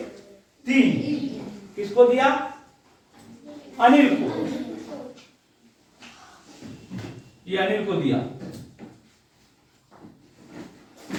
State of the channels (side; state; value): both; identical; correlation 1.00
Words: किसको दिया अनिल को, ये अनिल को दिया,